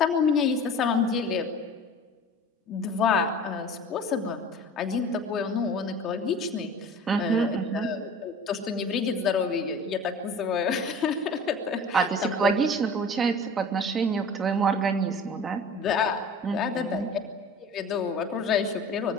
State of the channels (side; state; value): both; normal; correlation 0.41